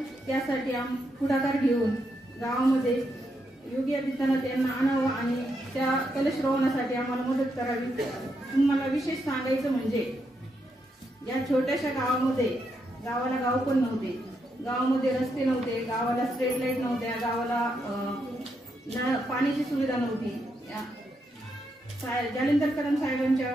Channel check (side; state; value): both; normal; correlation 0.81